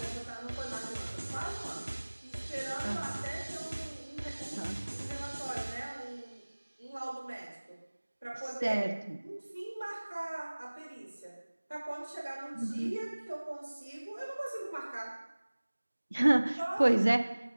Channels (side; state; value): both; inverted; correlation -1.00